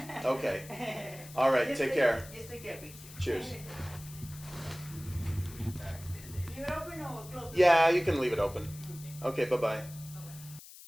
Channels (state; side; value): noise; left; hiss, 17 dB below the sound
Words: Okay. All right, take care. Just take care, picture. Cheers. Leave it open or close it? Yeah, you can leave it open. Okay, bye-bye.